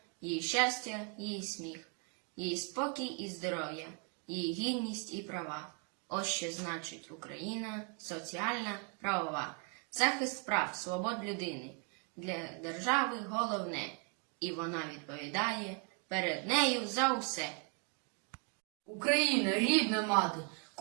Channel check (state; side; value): quieter; left; 38.5 dB